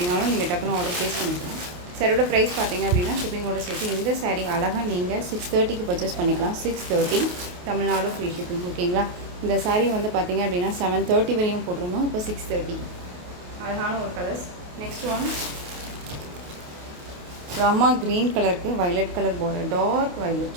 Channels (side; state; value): left; late; 28 ms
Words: நீங்கள் டக்குன்னு ஆர்டர் ப்ளேஸ் பண்ணிக்கலாம். சாரியோட ப்ரைஸ் பார்த்திங்க அப்படின்னா ஷிப்பிங்கோட சேர்த்து இந்த சாரீ அழகாக நீங்கள் 630க்கு பர்ச்சேஸ் பண்ணிக்கலாம். 630 தமிழ்நாடு ஃப்ரீ ஷிப்பிங். ஓகேங்களா. இந்த சாரீ வந்து பார்த்திங்க அப்படின்னா 730 வரையும் போட்டிருந்தோம். இப்போ 630. அழகான ஒரு colours. Next one Rama green கலருக்கு violet colour border, dark